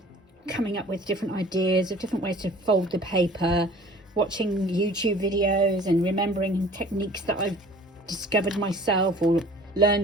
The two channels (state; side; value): normal; both; correlation 0.48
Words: coming up with different ideas of different ways to fold the paper, watching YouTube videos and remembering techniques that I've discovered myself or